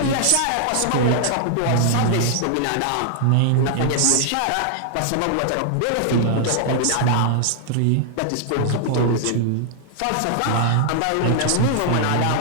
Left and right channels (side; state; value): both; different; correlation 0.00